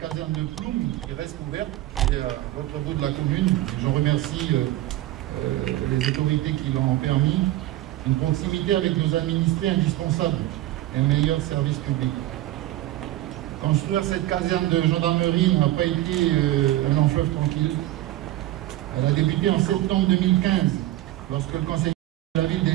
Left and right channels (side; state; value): left; quieter; 15.7 dB